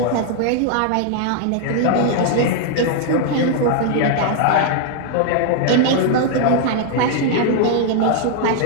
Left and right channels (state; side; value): different; both; correlation 0.00